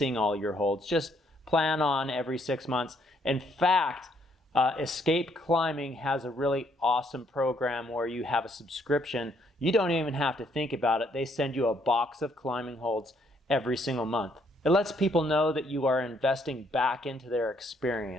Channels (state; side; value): normal; both; correlation 0.70